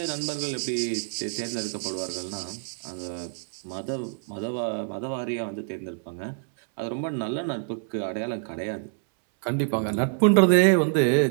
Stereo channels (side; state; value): left; silent; 61 dB below the other